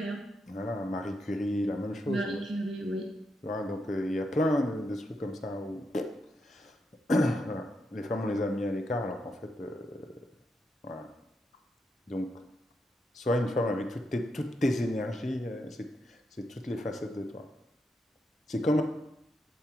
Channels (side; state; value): both; normal; correlation 0.82